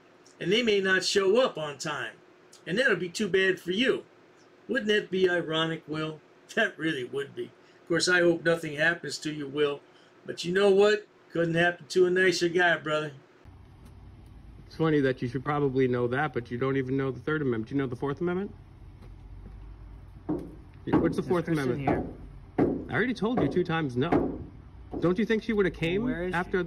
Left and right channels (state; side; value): identical; both; correlation 1.00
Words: And they may not show up on time. And that'll be too bad for you. Wouldn't that be ironic, Will? That really would be. Of course, I hope nothing happens to you, Will. But you know what? Couldn't happen to a nicer guy, brother. It's funny that you should probably know that, but you don't even know the Third Amendment. Do you know the Fourth Amendment? What's the Fourth Amendment? Here. I already told you 2 times no. Don't you think she would have came after